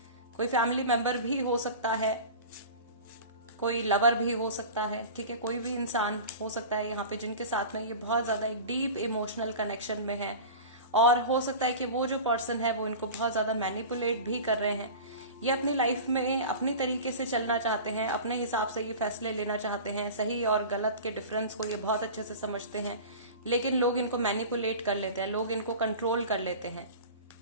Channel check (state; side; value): inverted; both; correlation -0.34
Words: कोई फैमिली मेंबर भी हो सकता है, कोई लवर भी हो सकता है। ठीक है, कोई भी इंसान हो सकता है यहाँ पे जिनके साथ में ये बहुत ज्यादा एक डीप इमोशनल कनेक्शन में है। और हो सकता है कि वो जो पर्सन है वो इनको बहुत ज्यादा मैनिपुलेट भी कर रहे हैं। ये अपनी लाइफ में अपनी तरीके से चलना चाहते हैं, अपने हिसाब से ये फैसले लेना चाहते हैं, सही और गलत के डिफरेंस को ये बहुत अच्छे से समझते हैं, लेकिन लोग इनको मैनिपुलेट कर लेते हैं, लोग इनको कंट्रोल कर लेते हैं।